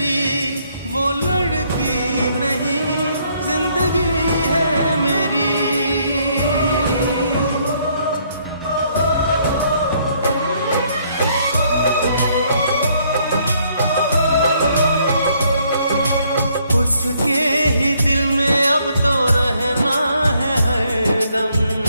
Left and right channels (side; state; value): both; inverted; correlation -0.68